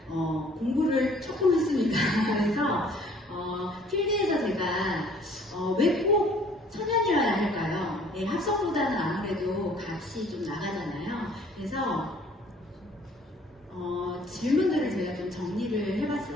공부를 조금 했습니다. 그래서 필드에서 제가 왜 꼭 천연이어야 할까요? 네, 합성보다는 아무래도 값이 좀 나가잖아요. 그래서 질문들을 제가 좀 정리를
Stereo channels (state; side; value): normal; both; correlation 0.56